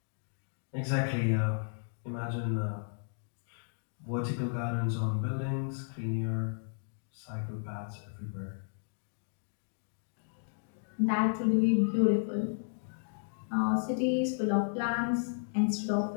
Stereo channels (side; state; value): right; silent; digital silence